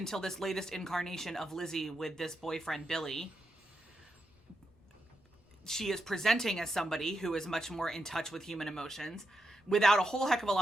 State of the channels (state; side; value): normal; both; correlation 0.85